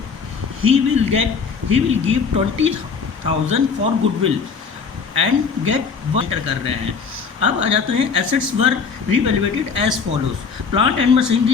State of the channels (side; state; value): right; quieter; 5.6 dB